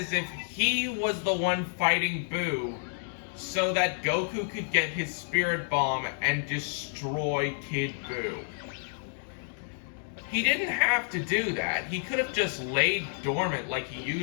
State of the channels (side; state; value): right; silent; digital silence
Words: if he was the one fighting Buu so that Goku could get his Spirit Bomb and destroy Kid Buu. He didn't have to do that. He could have just laid dormant like he